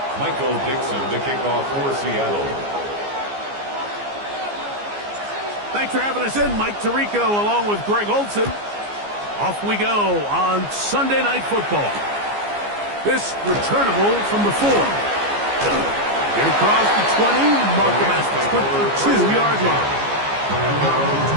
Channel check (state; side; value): late; left; 14 ms